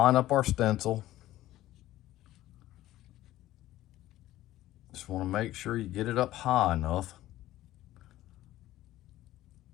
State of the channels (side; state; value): right; quieter; 15.0 dB